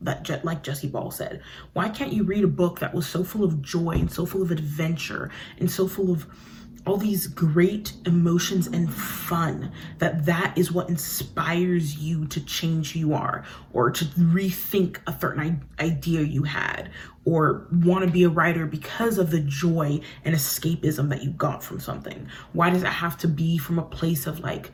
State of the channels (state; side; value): identical; both; correlation 1.00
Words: Like Jessie Ball said, why can't you read a book that was so full of joy and so full of adventure and so full of all these great emotions and fun, that is what inspires you to change who you are, or to rethink a certain idea you had, or want to be a writer because of the joy and escapism that you got from something? Why does it have to be from a place of like